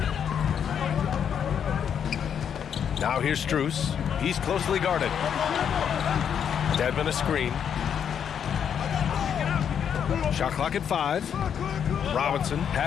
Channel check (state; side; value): quieter; right; 8.1 dB